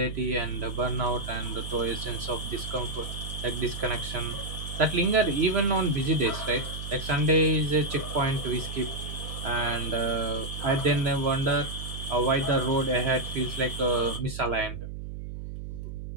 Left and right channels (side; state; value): right; noise; hum, 8 dB below the sound